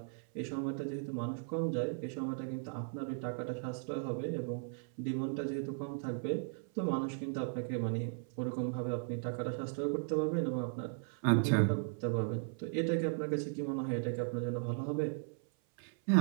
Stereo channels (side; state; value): left; silent; 53 dB below the other